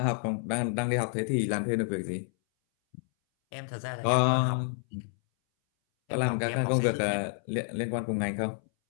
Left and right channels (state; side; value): silent; right; 58 dB below the other